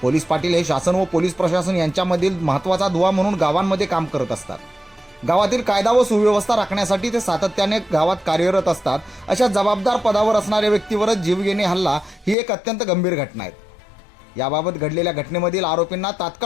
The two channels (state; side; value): drops out; right; at 12.4 s